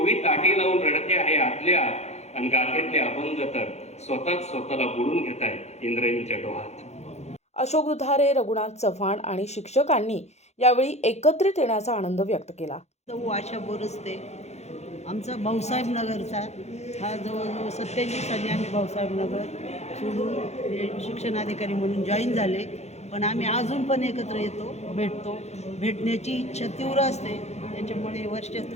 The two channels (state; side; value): late; right; 0.32 ms